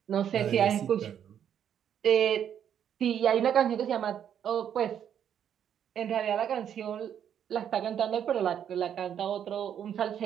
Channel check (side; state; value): left; quieter; 9.1 dB